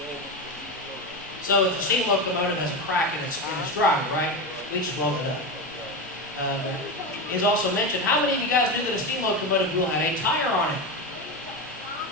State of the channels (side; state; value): both; normal; correlation 0.18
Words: So if the steam locomotive has a crack in its drive, right, we just blow it up. It's also mentioned, how many of you guys knew that a steam locomotive wheel had a tire on it?